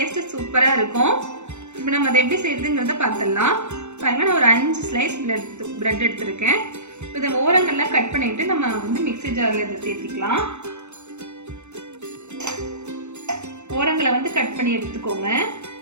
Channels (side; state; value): left; late; 0.83 ms